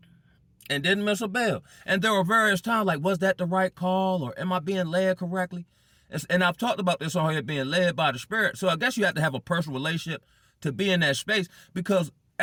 And didn't miss a bill. And there were various times like, was that the right call? Or am I being led correctly? And I've talked about this on here, being led by the Spirit. So I guess you have to have a personal relationship to be in that space, because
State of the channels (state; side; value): identical; both; correlation 1.00